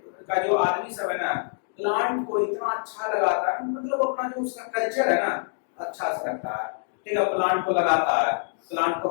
का जो आदमी सब है ना प्लांट को इतना अच्छा लगाता है मतलब अपना जो उसका कल्चर है ना अच्छा से रखता है ठीक है। प्लांट को लगाता है, प्लांट को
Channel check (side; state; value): right; silent; digital silence